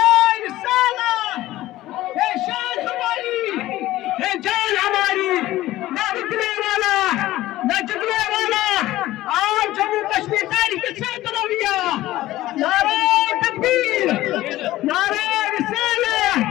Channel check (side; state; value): right; quieter; 16.0 dB